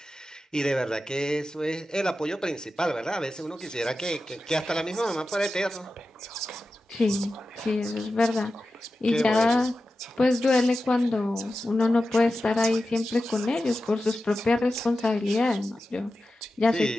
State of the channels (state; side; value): normal; both; correlation 0.92